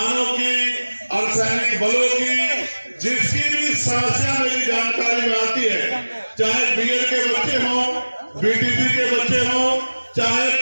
की, अर्धसैनिक बलों की, जिसकी भी समस्या मेरी जानकारी में आती है, चाहे बीएड के बच्चे हों, बीटीसी के बच्चे हों, चाहे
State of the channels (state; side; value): inverted; both; correlation -1.00